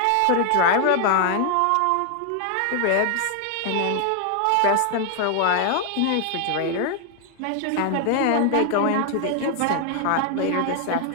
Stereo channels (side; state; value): both; different; correlation 0.00